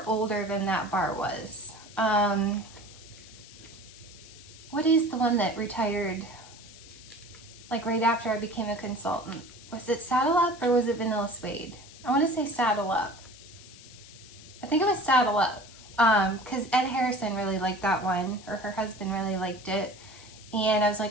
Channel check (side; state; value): left; noise; hiss, 19 dB below the sound